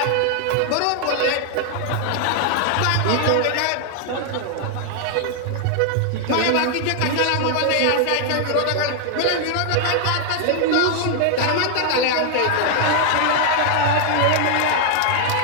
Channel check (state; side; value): different; both; correlation 0.00